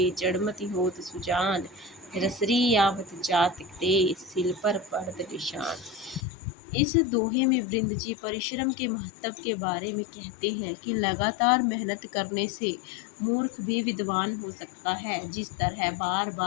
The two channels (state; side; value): drops out; right; at 6.2 s